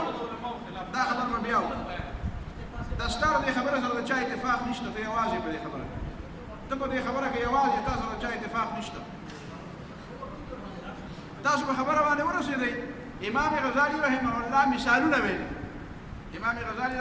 به بیا دا ستا د دې خبره سره د چا اتفاق نشته ته یوازې په دې خبره ته په دې خبره کې یوازې تا سره د چا اتفاق نشته تاسو په خبره باندې ورسېدئ امام غزالي رحمه الله مثالونه ویلي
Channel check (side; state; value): both; identical; correlation 1.00